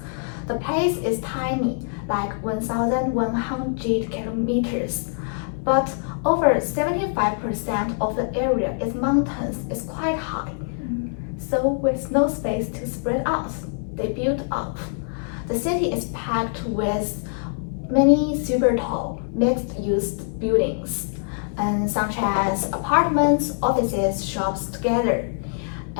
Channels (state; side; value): silent; right; 63 dB below the other